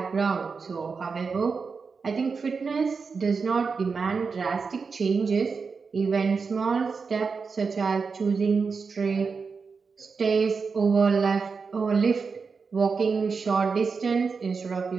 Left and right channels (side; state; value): left; quieter; 5.1 dB